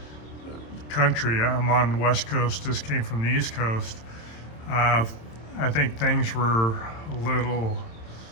the country, I'm on the West Coast, this came from the East Coast, I think things were a little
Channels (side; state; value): right; late; 27 ms